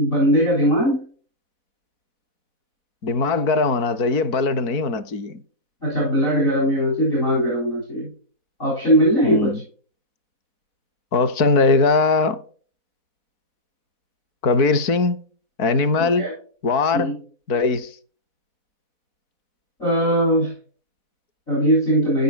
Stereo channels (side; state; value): right; late; 4.1 ms